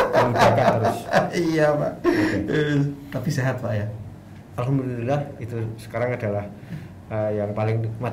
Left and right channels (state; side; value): identical; both; correlation 1.00